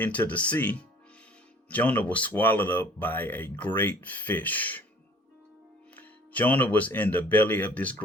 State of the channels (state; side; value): normal; both; correlation 0.52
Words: the sea, Jonah was swallowed up by a great fish. Jonah was in the belly of this